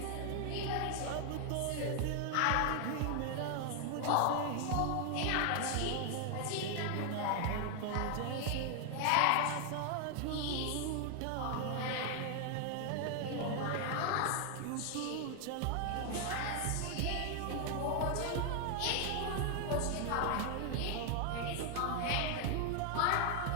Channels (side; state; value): both; different; correlation 0.00